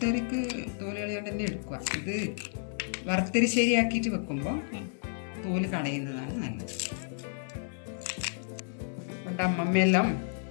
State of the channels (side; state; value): right; silent; 57 dB below the other